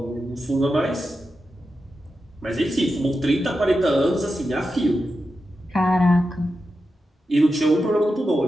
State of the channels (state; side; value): normal; both; correlation 0.90